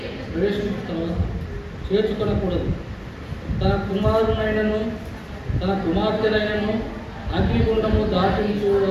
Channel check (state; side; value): identical; both; correlation 1.00